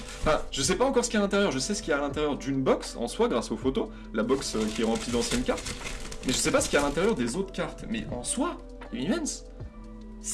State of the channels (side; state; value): both; identical; correlation 1.00